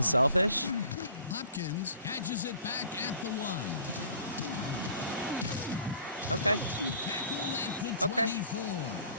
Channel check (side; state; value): both; inverted; correlation -0.49